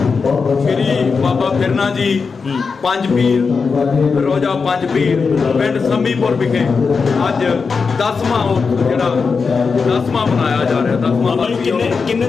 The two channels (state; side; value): quieter; right; 5.1 dB